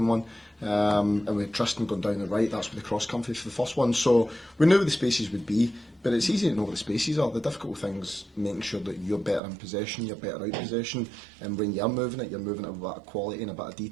one, and with Tristan going down the right, that's where the cross came for the first one. So we knew where the spaces would be, but it's easy to know where the spaces are. The difficult thing's making sure that you're better in possession, you're better out possession, and when you're moving it with a bit of quality and a bit of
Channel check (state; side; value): drops out; left; at 9.4 s